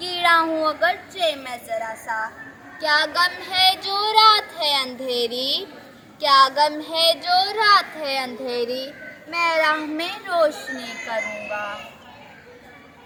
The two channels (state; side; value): identical; both; correlation 1.00